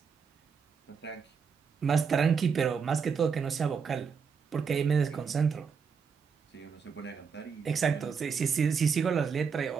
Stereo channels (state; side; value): quieter; left; 6.1 dB